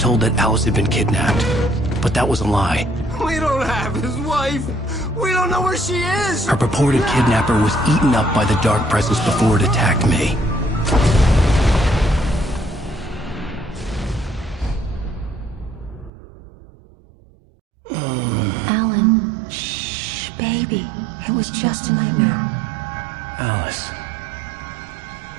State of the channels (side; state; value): left; drops out; at 16.1 s